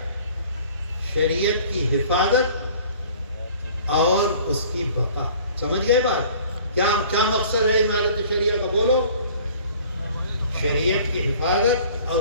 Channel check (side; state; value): both; inverted; correlation -0.50